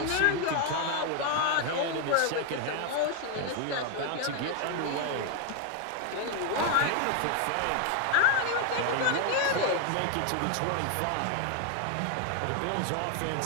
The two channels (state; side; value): different; both; correlation 0.01